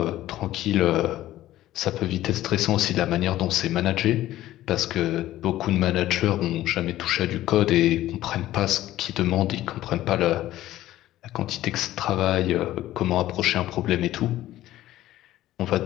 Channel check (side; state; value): right; quieter; 14.5 dB